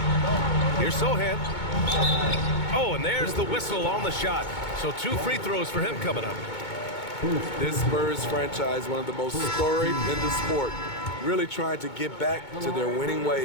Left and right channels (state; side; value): late; right; 2.2 ms